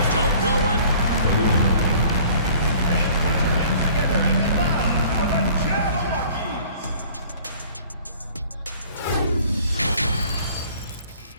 Don't go in.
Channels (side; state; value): both; inverted; correlation -0.52